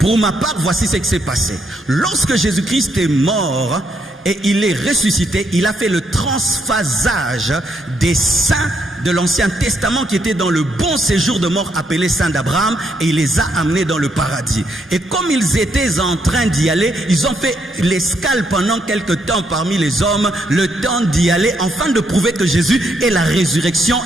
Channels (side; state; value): both; normal; correlation 0.76